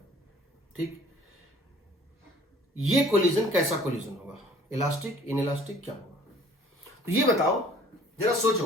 ठीक, ये कोलिजन कैसा कोलिजन होगा? इलास्टिक, इनइलास्टिक, क्या होगा? तो ये बताओ, जरा सोचो।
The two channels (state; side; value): normal; both; correlation 0.52